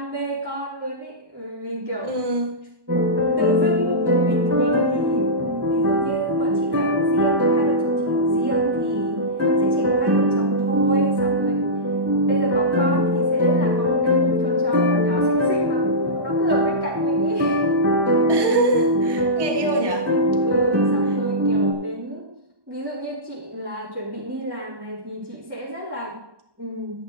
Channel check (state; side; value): late; left; 1.1 ms